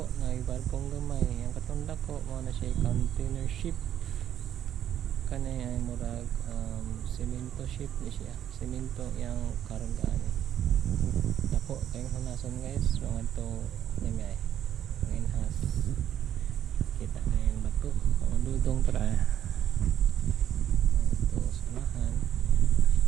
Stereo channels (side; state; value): left; quieter; 10.5 dB